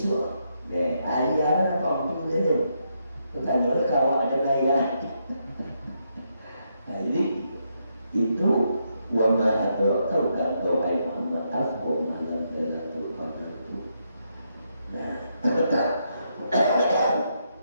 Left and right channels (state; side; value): inverted; both; correlation -0.79